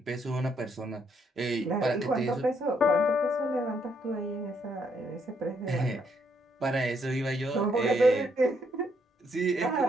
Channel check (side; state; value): both; normal; correlation 0.73